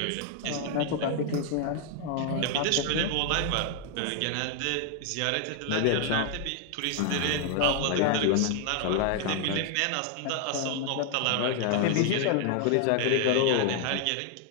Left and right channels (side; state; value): both; different; correlation 0.00